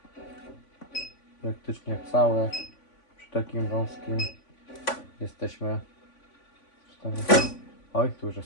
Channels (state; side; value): late; right; 3.5 ms